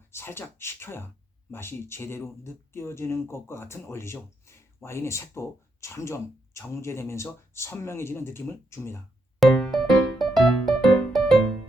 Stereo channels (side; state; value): both; normal; correlation 0.80